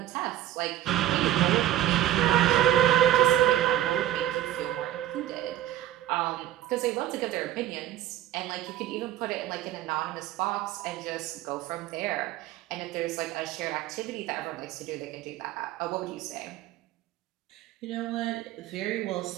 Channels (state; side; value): quieter; left; 13.0 dB